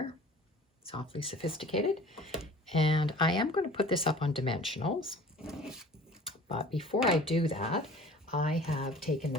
It's awfully sophisticated. And I am going to put this up on dimensionals. But before I do that, I have taken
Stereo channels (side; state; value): both; normal; correlation 0.45